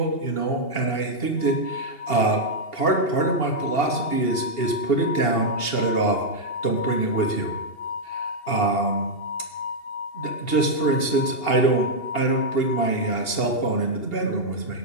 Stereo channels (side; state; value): right; late; 2.8 ms